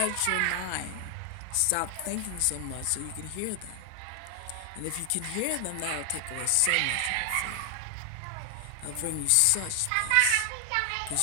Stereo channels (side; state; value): both; different; correlation 0.00